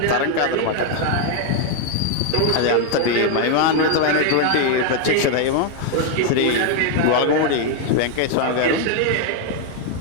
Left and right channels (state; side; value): different; both; correlation 0.00